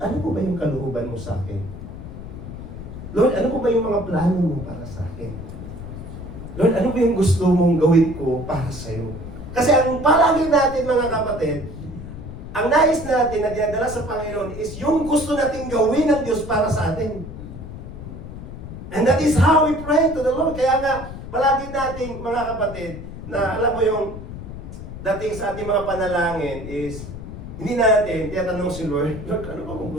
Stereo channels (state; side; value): noise; left; rumble, 11 dB below the sound